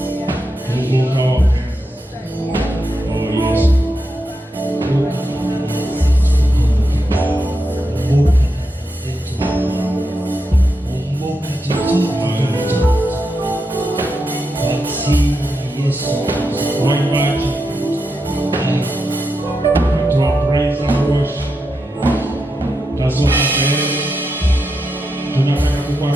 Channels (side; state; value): both; normal; correlation 0.86